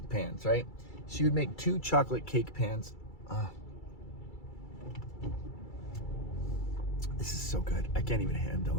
pans, right? She would make 2 chocolate cake pans. This is so good. I can't even handle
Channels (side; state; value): right; late; 2.3 ms